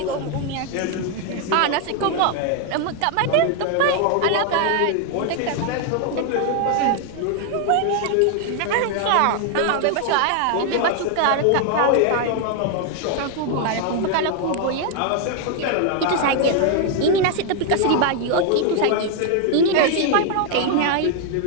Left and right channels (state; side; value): different; both; correlation 0.00